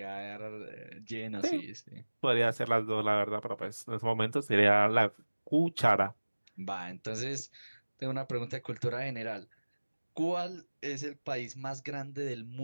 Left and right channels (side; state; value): both; inverted; correlation -1.00